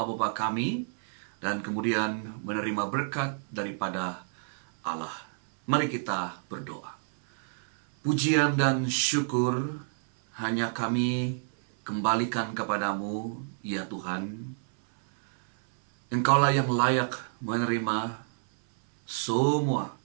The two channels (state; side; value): silent; left; 59 dB below the other